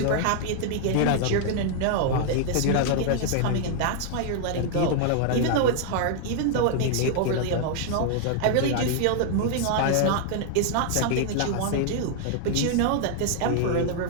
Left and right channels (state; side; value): different; both; correlation 0.00